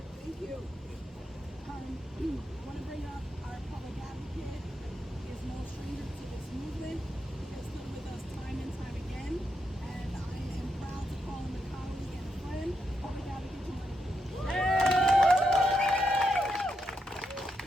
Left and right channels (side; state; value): both; normal; correlation 0.83